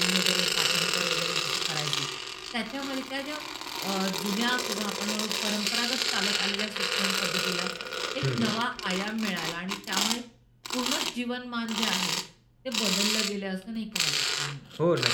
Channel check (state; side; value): identical; both; correlation 1.00